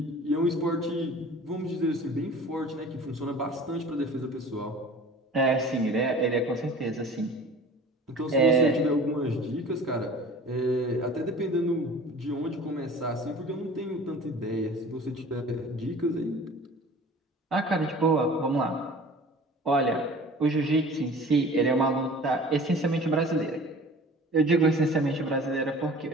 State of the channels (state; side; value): normal; both; correlation 0.44